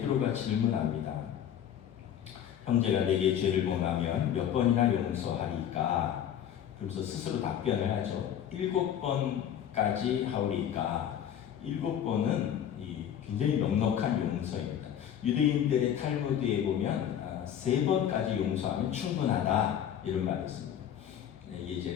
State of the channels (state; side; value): quieter; right; 9.8 dB